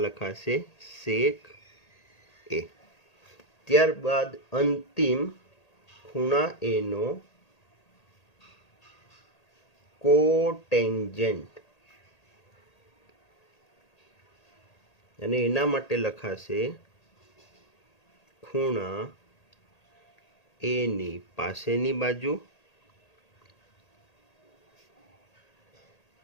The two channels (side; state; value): right; late; 1.8 ms